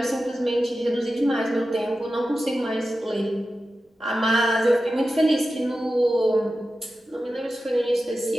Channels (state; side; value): normal; both; correlation 0.93